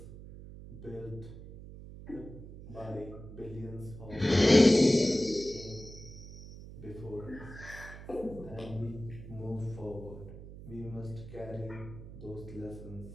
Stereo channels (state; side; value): noise; right; hum, 14 dB below the sound